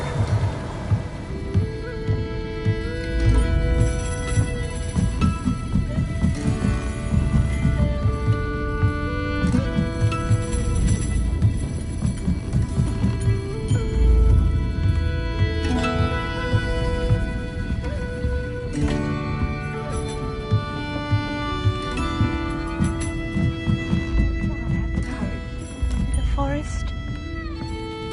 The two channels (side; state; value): both; identical; correlation 1.00